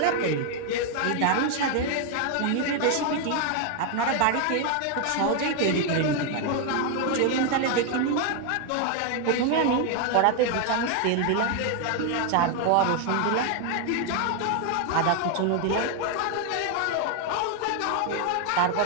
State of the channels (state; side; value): different; both; correlation 0.01